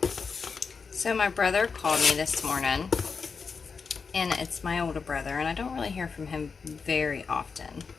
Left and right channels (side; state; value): right; quieter; 5.3 dB